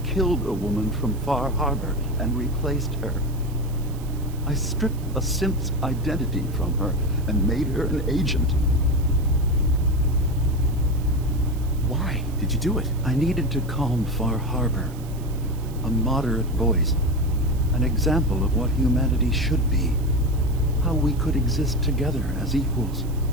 a woman from Far Harbor and replaced her. I stripped a synth's identity from her and made her an agent. Why did you do it? I needed to calm Far Harbor. A moderate voice. An example of what humanity should be. How we could exist together as equals.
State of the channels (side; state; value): right; noise; hiss, 22 dB below the sound